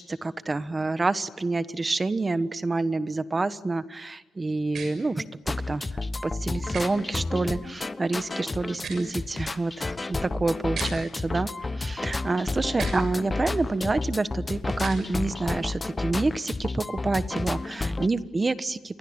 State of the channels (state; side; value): normal; both; correlation 0.95